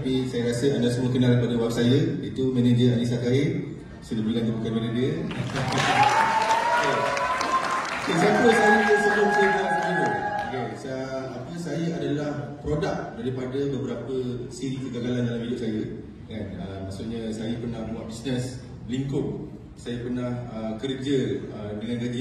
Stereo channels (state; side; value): identical; both; correlation 1.00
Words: saya rasa anda semua kenal pada web saya, itu manager Anissa Kair. Sudah bilang bukan manager. Siapa saya sebelum saya buat Forever? Saya adalah produk daripada beberapa siri kegagalan dalam hidup saya. Kan? Maksudnya saya pernah buat bisnes lingkup, saya pernah kerja dengan gaji